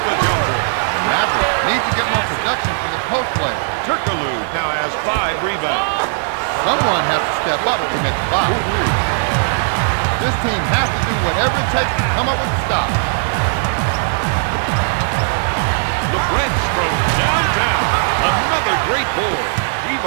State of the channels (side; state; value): left; silent; 56 dB below the other